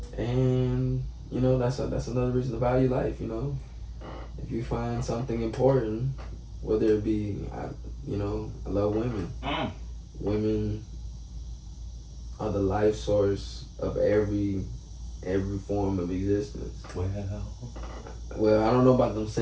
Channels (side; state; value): both; identical; correlation 1.00